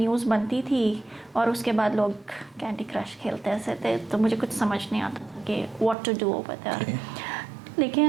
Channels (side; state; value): left; drops out; at 6.0 s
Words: बनती थी, और उसके बाद लोग कैंडी क्रश खेलते ऐसे थे। तो मुझे कुछ समझ नहीं आता कि what to do over there.